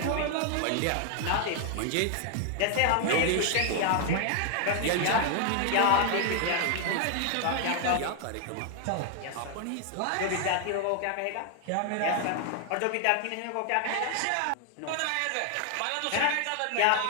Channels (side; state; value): both; different; correlation 0.00